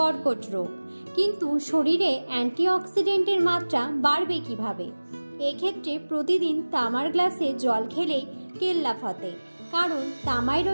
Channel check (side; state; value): both; inverted; correlation -1.00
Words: রোগ। কিন্তু শরীরে অ্যান্টিঅক্সিডেন্টের মাত্রা বাড়বে কিভাবে? এক্ষেত্রে প্রতিদিন তামার গ্লাসে জল খেলেই কেল্লা ফতে, কারণ তামায়